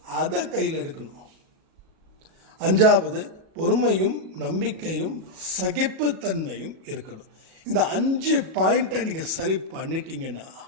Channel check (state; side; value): late; left; 37 ms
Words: அதை கையில் எடுக்கணும். அஞ்சாவது, பொறுமையும் நம்பிக்கையும் சகிப்புத்தன்மையும் இருக்கணும். இந்த 5 பாயிண்ட்டை நீங்கள் சரி பண்ணிட்டீங்கன்னா